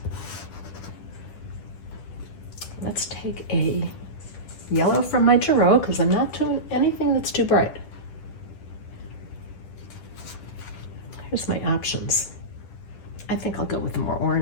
Let's take a yellow from my Gero, because I'm not doing anything that's too bright. Here's my options. I think I'll go with the more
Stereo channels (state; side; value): late; right; 10 ms